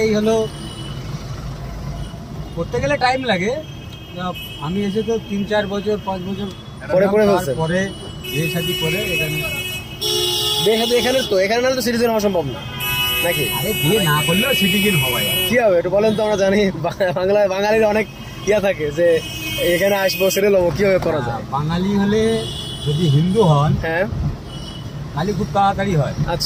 হলো করতে গেলে টাইম লাগে। আমি এসে তো 3-4 বছর 5 বছর পরে ফেলছেন। পরে বিয়ে শাদী করে এখানে। এখানে তো এখানে নাহলে তো সিটিজেন হওয়া সম্ভব না নাকি? আরে বিয়ে না করলেও সিটিজেন হওয়া যায়। কি হবে একটু বলেন তো, আমরা জানি বাঙালির অনেক ইয়া থাকে যে এখানে আসবো সেটেল হবো, কিভাবে করা যায়? বাঙালি হলে যদি হিন্দু হন হ্যাঁ তাহলে খুব তাড়াতাড়ি হয়,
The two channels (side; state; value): both; identical; correlation 1.00